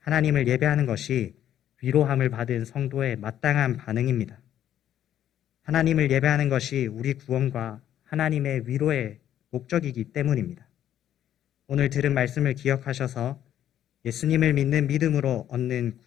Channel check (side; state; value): right; quieter; 11.0 dB